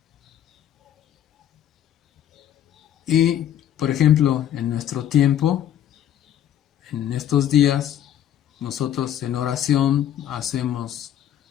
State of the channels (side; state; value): right; quieter; 10.7 dB